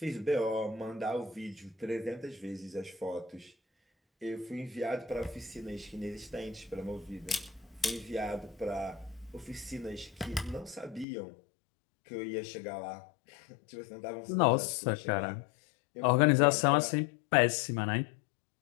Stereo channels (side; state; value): right; drops out; at 11.1 s